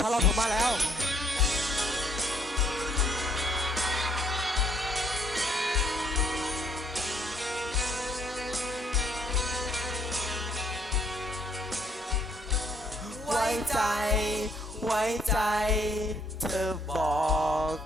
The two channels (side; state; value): both; normal; correlation 0.67